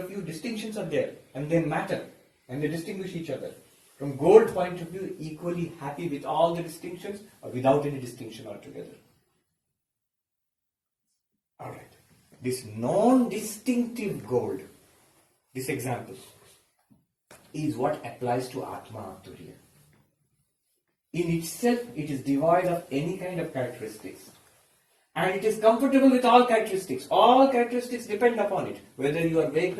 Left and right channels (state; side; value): identical; both; correlation 1.00